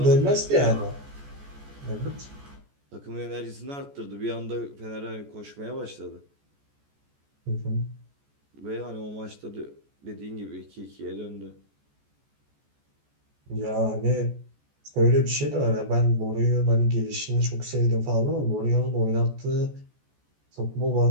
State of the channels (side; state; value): left; late; 14 ms